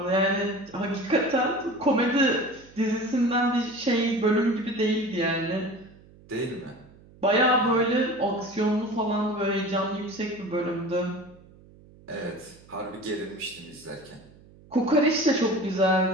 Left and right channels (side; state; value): right; noise; hum, 24 dB below the sound